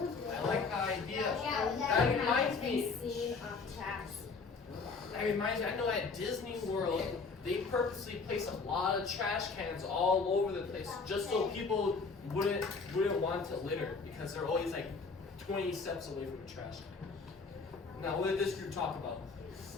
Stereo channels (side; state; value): right; quieter; 4.5 dB